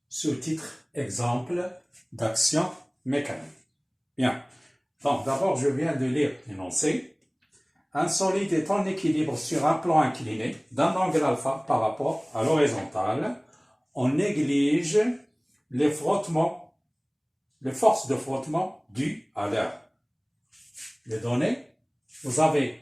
sous-titre Exemple d'action mécanique. Bien. Donc, d'abord, je viens de lire l'énoncé. Un solide est en équilibre sur un plan incliné d'un angle alpha par rapport à l'horizontale. On néglige les frottements, les forces de frottement dues à l'air. Les données, vous avez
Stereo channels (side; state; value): both; identical; correlation 1.00